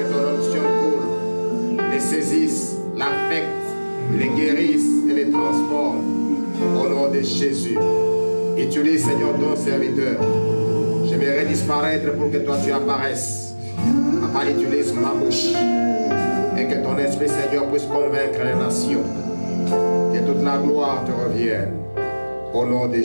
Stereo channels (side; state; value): both; inverted; correlation -1.00